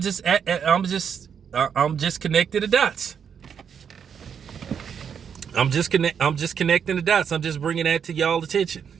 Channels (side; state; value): left; quieter; 7.5 dB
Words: connecting the dots. I'm just connecting the dots. I'm just bringing that to y'all attention.